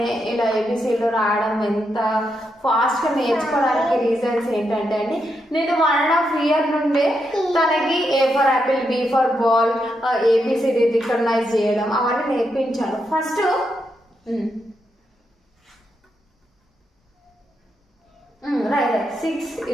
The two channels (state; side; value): normal; both; correlation 0.83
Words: ఇలా ఏబిసిలు రాయడం ఎంత ఫాస్ట్గా నేర్చుకోవడానికి రీజన్స్ ఏంటంటే అండి, నేను 1.5 year నుండే తనకి A for apple, B for ball, ABCD recognize చేయడం అవన్నీ నేర్పించాను. ఫస్ట్ రైట్ 6